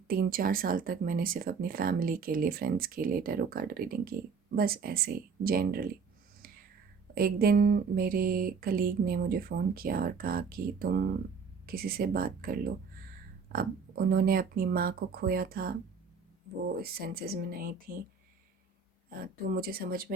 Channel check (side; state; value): left; quieter; 5.6 dB